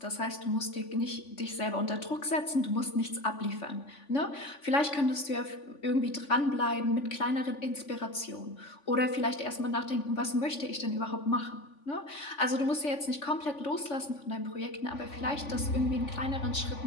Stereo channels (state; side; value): late; right; 3.5 ms